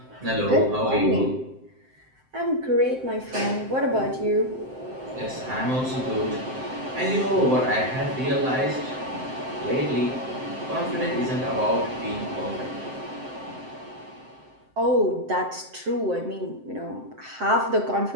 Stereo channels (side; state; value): left; late; 7.7 ms